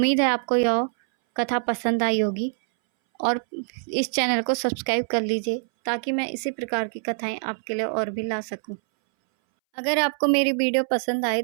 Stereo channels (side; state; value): left; silent; 61 dB below the other